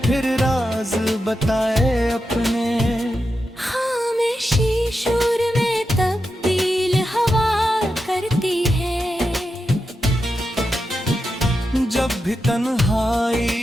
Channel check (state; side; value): normal; both; correlation 0.88